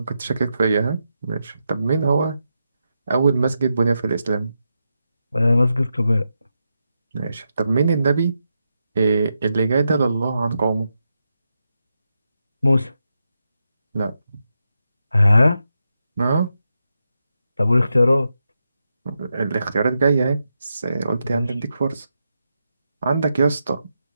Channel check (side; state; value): both; inverted; correlation -0.86